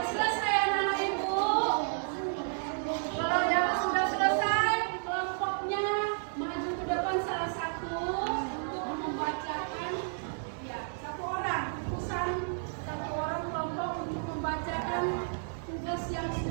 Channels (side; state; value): left; silent; digital silence